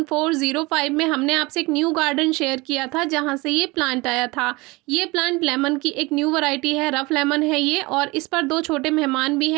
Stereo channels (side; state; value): left; quieter; 23.7 dB